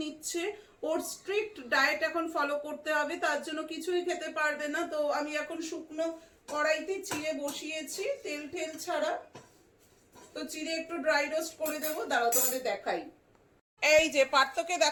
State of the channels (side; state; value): both; identical; correlation 1.00